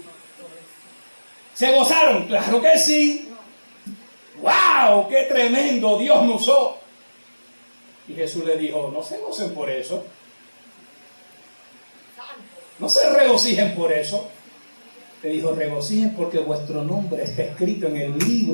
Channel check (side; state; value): both; inverted; correlation -1.00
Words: ¿Se gozaron? Claro que sí. ¡Wow! ¡Qué tremendo! Dios me usó. Y Jesús le dijo, no se gocen por eso. No se regocijen por eso. Le dijo, regocijen porque vuestro nombre está escrito en el